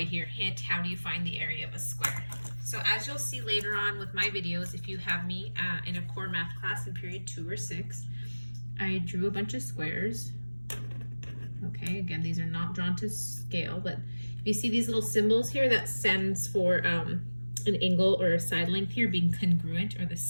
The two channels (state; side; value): inverted; both; correlation -1.00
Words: here. Hint, how do you find the area of a square? So as you'll see later on with my videos, if you have me in a core math class in period 2 or 6, I drew a bunch of squares. Okay, again, these are not drawn to scale, but if you see these little symbols here, that stands for an angle or a side length here being congruent or the